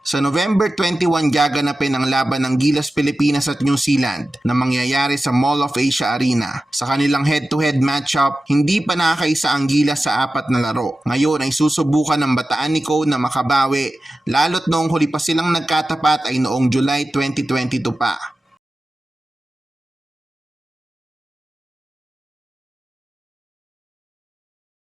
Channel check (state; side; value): normal; both; correlation 0.94